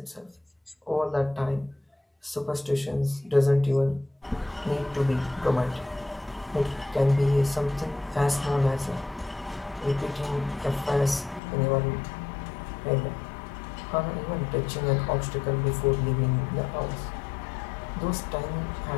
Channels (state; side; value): drops out; right; at 11.4 s